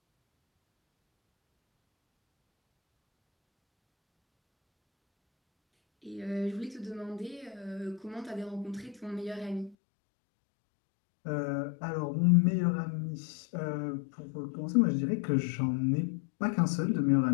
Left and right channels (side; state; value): right; drops out; at 9.8 s